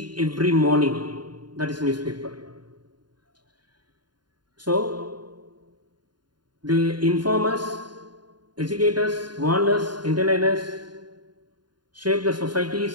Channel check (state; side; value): late; left; 0.71 ms